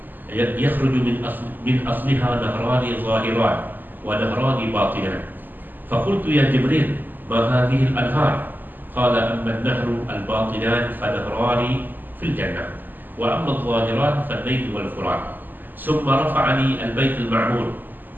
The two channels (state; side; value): late; left; 0.088 ms